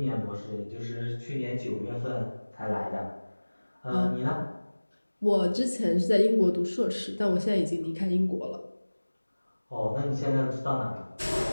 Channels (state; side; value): inverted; both; correlation -1.00